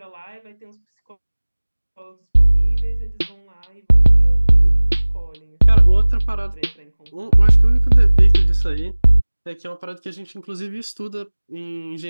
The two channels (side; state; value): both; inverted; correlation -1.00